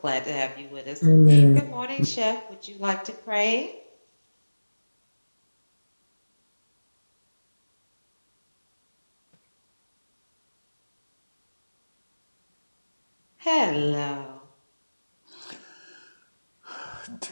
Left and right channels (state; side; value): inverted; both; correlation -1.00